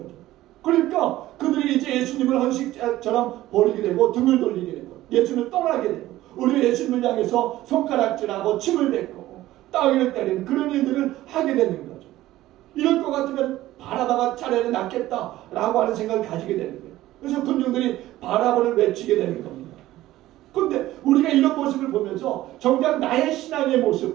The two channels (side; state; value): left; quieter; 15.5 dB